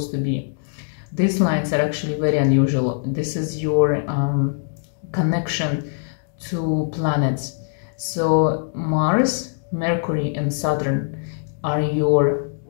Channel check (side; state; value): right; silent; digital silence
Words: to be. These lines are actually very unusual. This is your connection to planets. So Mars, Mercury, and Saturn are your